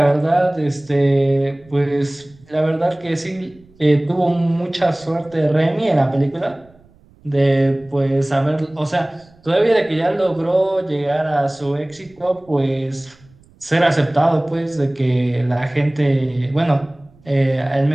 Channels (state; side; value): noise; right; rumble, 29 dB below the sound